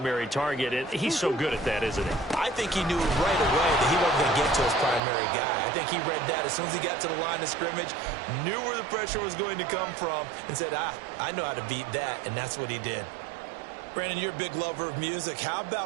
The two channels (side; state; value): left; drops out; at 5.0 s